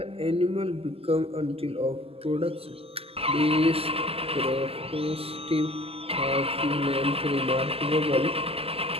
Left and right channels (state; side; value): late; left; 0.28 ms